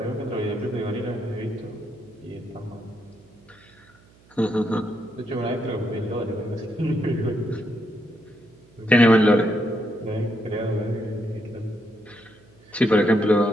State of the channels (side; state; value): right; noise; hum, 28 dB below the sound